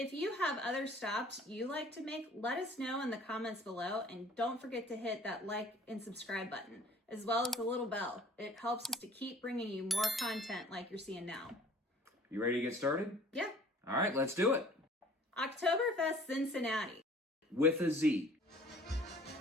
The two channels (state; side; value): normal; both; correlation 0.51